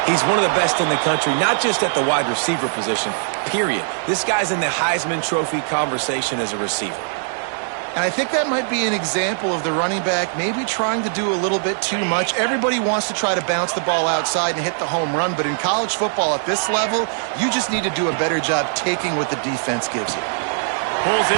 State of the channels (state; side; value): silent; left; digital silence